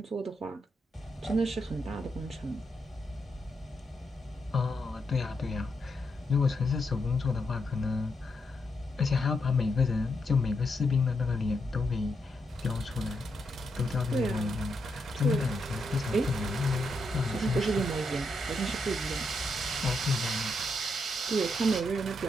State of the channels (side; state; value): both; normal; correlation 0.81